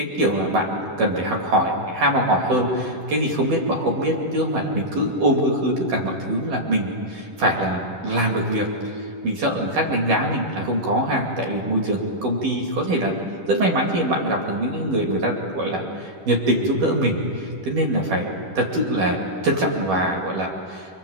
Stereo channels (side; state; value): left; late; 10 ms